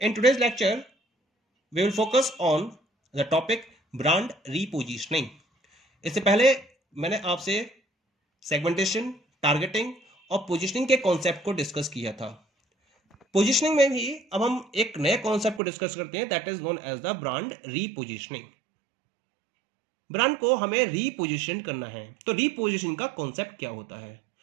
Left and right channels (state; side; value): drops out; left; at 15.6 s